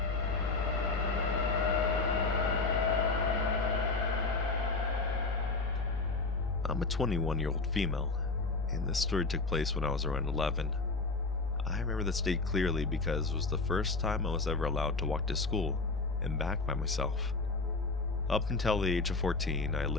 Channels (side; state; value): right; quieter; 3.8 dB